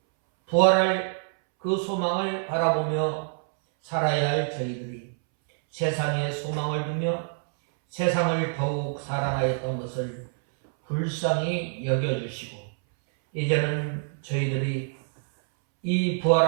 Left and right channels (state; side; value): silent; left; 61 dB below the other